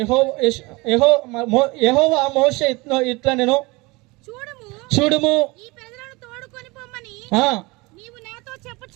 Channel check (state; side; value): quieter; left; 24.2 dB